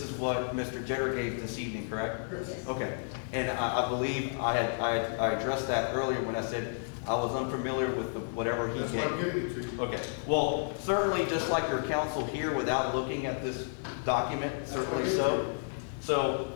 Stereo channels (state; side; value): silent; right; digital silence